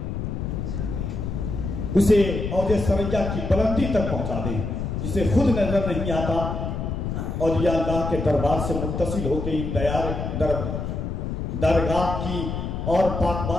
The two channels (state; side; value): noise; left; rumble, 3 dB below the sound